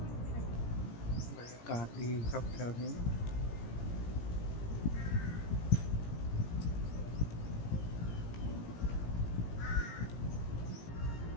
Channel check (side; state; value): right; late; 17 ms